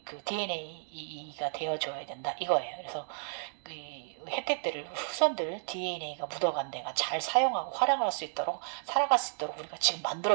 DNA가 되어줘야 된다 이거예요. 그래서 그 혜택들을 후손들 DNA가 묻어간 데가 잘 사용하고 활용할 수 있도록, 살아갈 수 있도록 우리가 지금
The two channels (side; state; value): left; silent; digital silence